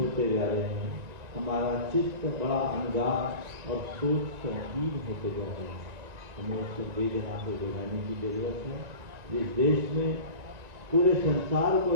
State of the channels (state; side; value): late; left; 2.2 ms